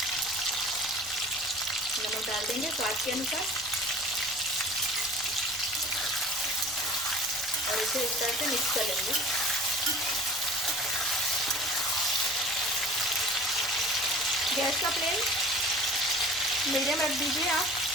नमक डाल देंगे स्वाद के अनुसार और इसे इस तरह से मिक्स कर लेंगे। गैस का फ्लेम मीडियम रख दीजिए आप।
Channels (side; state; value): left; noise; rumble, 25 dB below the sound